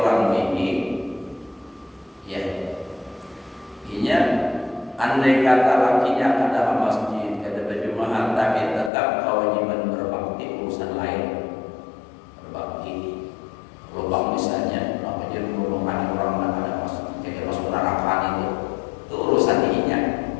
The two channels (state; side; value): drops out; right; at 8.9 s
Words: ini, ya, inya andai kata lakinya kada ke masjid, kada berjamaah, tapi tetap kewajiban berbakti urusan lain, berbakti. Lubang misalnya, apa jadi lubang orang nak ada masuk, kayak masuk neraka itu urusan inya.